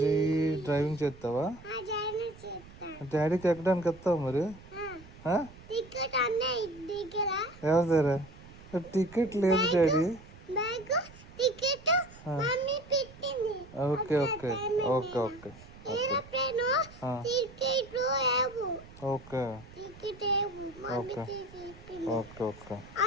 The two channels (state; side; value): noise; right; rumble, 20 dB below the sound